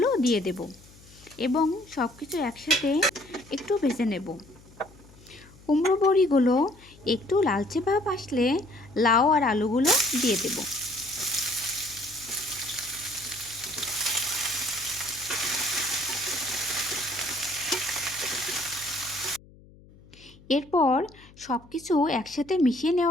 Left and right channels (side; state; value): left; noise; hum, 24 dB below the sound